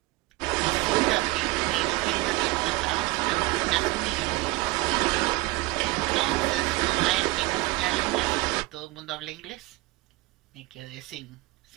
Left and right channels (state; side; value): quieter; left; 20.9 dB